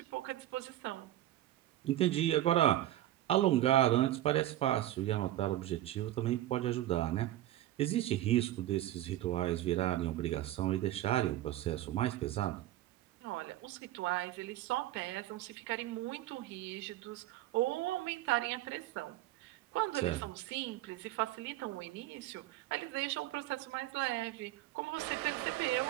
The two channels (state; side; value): quieter; left; 14.1 dB